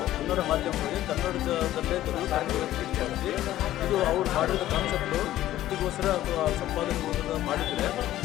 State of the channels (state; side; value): quieter; right; 13.9 dB